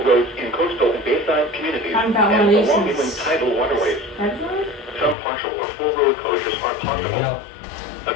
roads in coastal and bayside communities and along inland tidal waterways. Some partial or full road closures are possible. A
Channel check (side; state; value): right; drops out; at 5.2 s